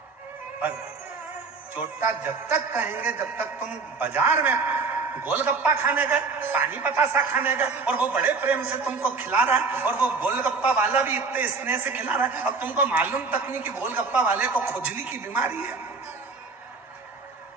पर चोट्टा जब तक कहेंगे जब तक तुम बाजार में गोलगप्पा खाने गए, पानी बतासा खाने गए, और वो बड़े प्रेम से तुमको खिला रहा है, और वो गोलगप्पा वाला भी इतने स्नेह से खिला रहा है, अब तुमको मालूम तक नहीं कि गोलगप्पा वाले को खुजली की बीमारी है।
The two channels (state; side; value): quieter; left; 4.5 dB